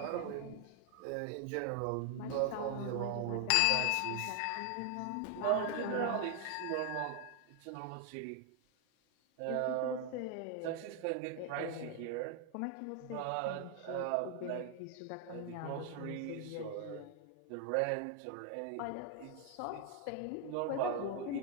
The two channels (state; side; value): different; both; correlation 0.00